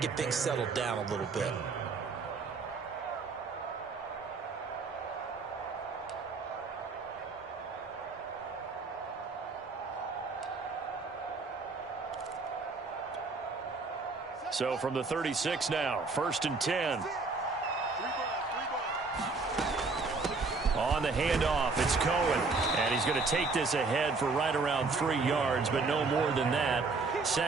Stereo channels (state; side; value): quieter; left; 4.1 dB